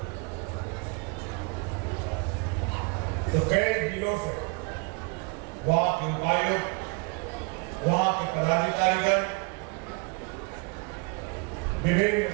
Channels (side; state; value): left; quieter; 31.8 dB